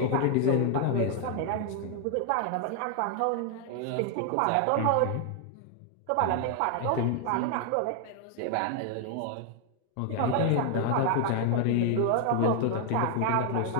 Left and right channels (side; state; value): both; different; correlation 0.00